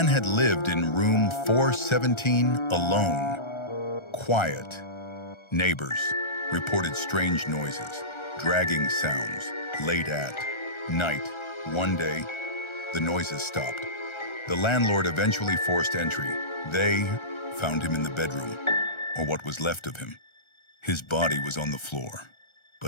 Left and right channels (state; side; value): late; right; 1.3 ms